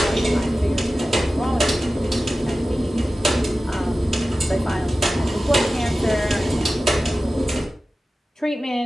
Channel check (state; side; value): normal; both; correlation 0.95